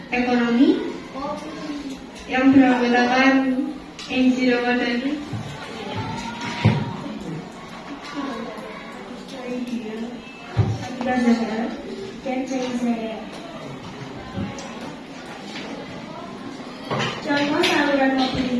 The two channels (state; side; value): identical; both; correlation 1.00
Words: ekonomi yang beranggotakan Enzi Ramadhani, Abdullah Zahra, dan Zaizaya. Contoh saluran